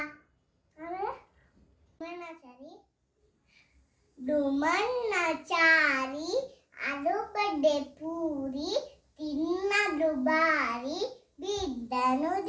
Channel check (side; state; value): both; identical; correlation 1.00